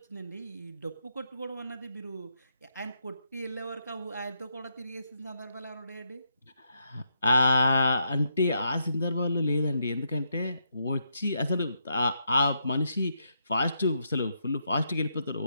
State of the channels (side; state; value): both; inverted; correlation -0.79